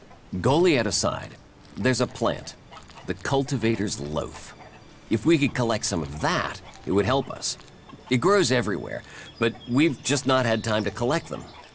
Goliath aside, there's a plant, the cultivator's loaf. If we could collect some of that, it would help us. It grows everywhere, but we've just not had time to collect them.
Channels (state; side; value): identical; both; correlation 1.00